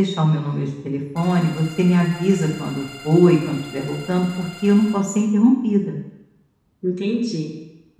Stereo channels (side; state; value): both; identical; correlation 1.00